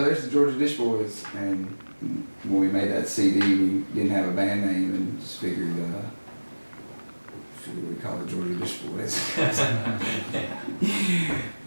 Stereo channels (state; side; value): inverted; both; correlation -1.00